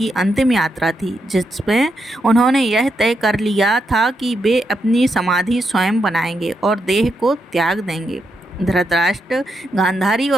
अंतिम यात्रा थी, जिसमें उन्होंने यह तय कर लिया था कि वे अपनी समाधि स्वयं बनाएंगे और देह को त्याग देंगे। धृतराष्ट्र, गांधारी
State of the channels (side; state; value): both; normal; correlation 0.82